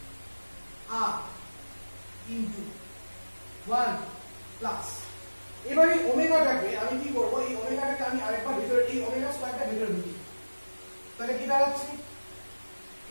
r into 1 plus, এবারে ওমেগাটাকে আমি কি করব? এই ওমেগাটাকে আমি আরেকবার ভিতরে, এই ওমেগা স্কয়ারটা ভিতরে ঢুকি, তাহলে কি দাঁড়াচ্ছে?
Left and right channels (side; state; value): both; inverted; correlation -1.00